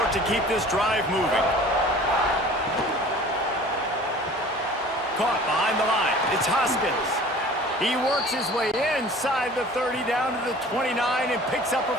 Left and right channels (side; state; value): both; normal; correlation 0.45